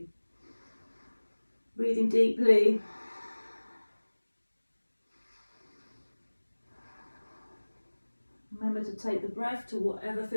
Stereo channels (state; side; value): inverted; both; correlation -1.00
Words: Breathing deeply. Remember to take the breath to whatever